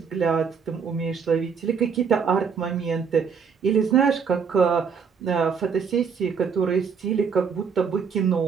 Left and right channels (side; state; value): left; quieter; 6.3 dB